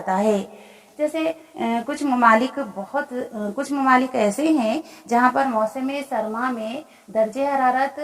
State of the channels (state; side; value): identical; both; correlation 1.00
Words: है। जैसे कुछ ममालिक ऐसे हैं जहाँ पर मौसम सरमा में दर्जे हरारत